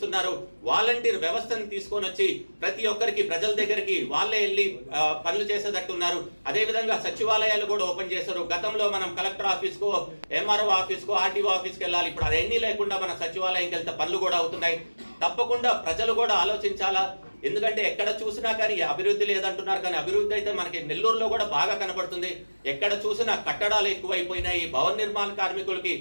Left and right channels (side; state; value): both; inverted; correlation -1.00